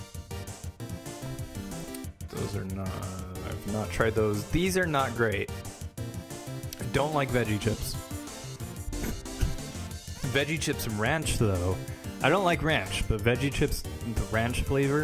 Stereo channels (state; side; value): identical; both; correlation 1.00